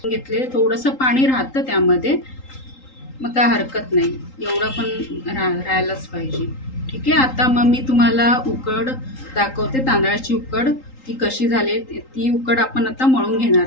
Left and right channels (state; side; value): late; right; 3.8 ms